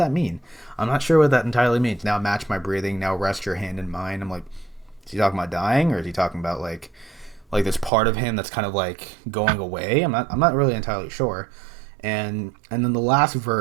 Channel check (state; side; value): drops out; left; at 7.9 s